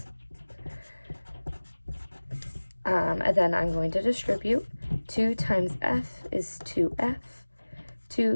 And then I'm going to distribute. 2 times f is 2f.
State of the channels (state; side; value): inverted; both; correlation -1.00